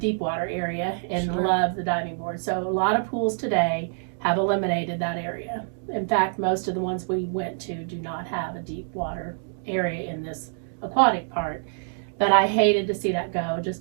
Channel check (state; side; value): silent; left; digital silence